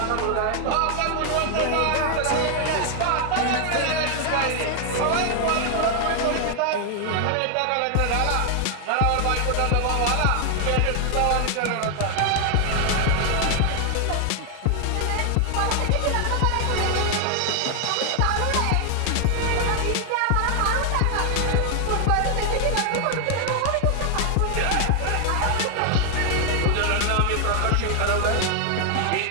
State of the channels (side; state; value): both; different; correlation 0.00